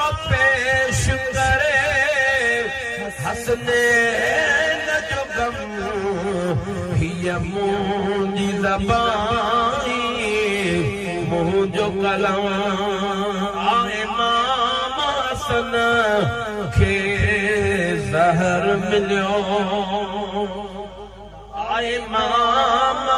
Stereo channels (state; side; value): identical; both; correlation 1.00